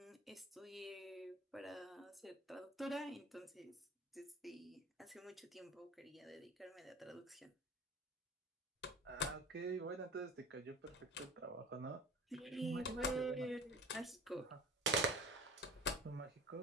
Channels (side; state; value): both; normal; correlation 0.40